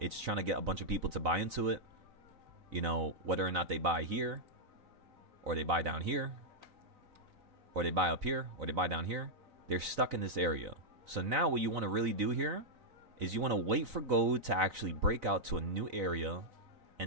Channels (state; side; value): late; left; 4.0 ms